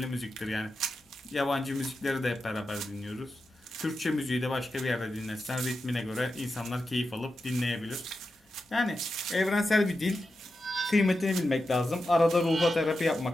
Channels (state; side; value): normal; both; correlation 0.90